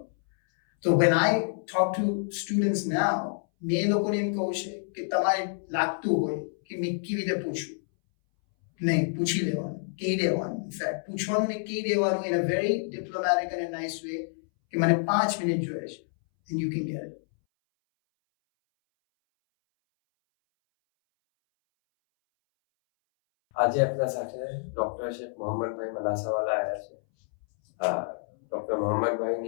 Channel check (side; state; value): right; silent; 59 dB below the other